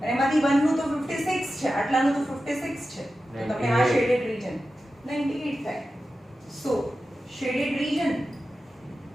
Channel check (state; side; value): normal; both; correlation 0.93